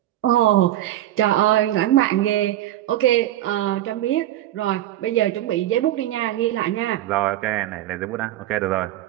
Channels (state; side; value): quieter; left; 13.7 dB